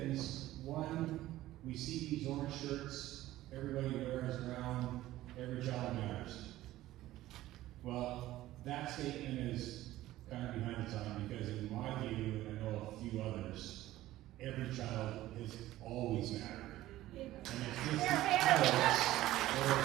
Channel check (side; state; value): left; quieter; 15.4 dB